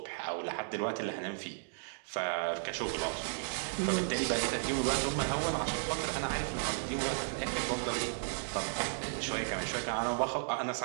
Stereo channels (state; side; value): silent; left; digital silence